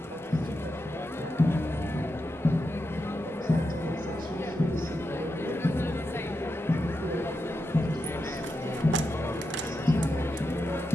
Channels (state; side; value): normal; both; correlation 0.87